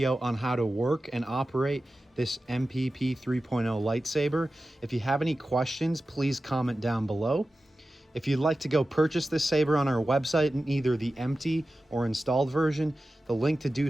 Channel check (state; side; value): normal; both; correlation 0.94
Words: on how to work and operate this MPP 3.0 lightsaber. If you have any questions, please comment down below. If you'd like to go purchase this saber on our website in either the empty or installed version, the link to do